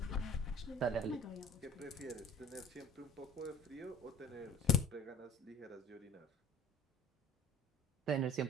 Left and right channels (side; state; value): both; normal; correlation 0.45